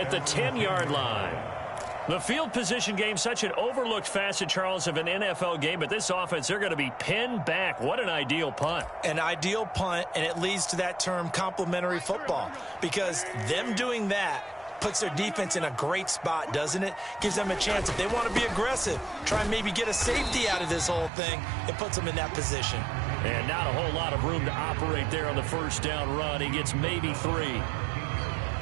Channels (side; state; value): left; drops out; at 21.1 s